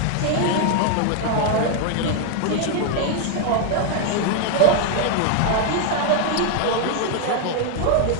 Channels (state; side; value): different; both; correlation 0.00